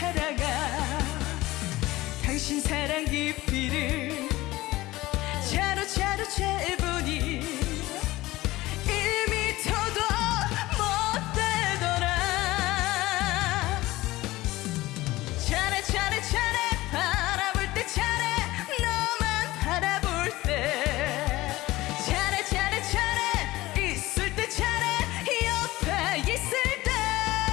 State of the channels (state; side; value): quieter; right; 18.4 dB